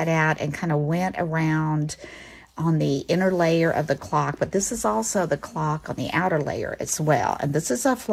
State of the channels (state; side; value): identical; both; correlation 1.00